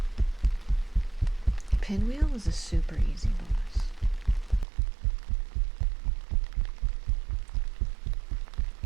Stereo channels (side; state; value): left; drops out; at 4.7 s